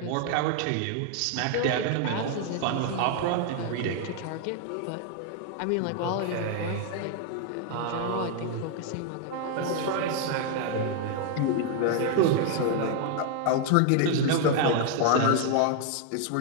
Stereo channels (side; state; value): both; different; correlation 0.00